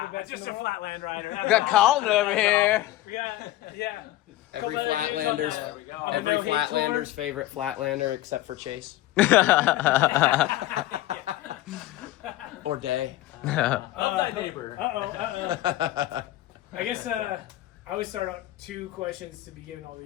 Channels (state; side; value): quieter; right; 15.6 dB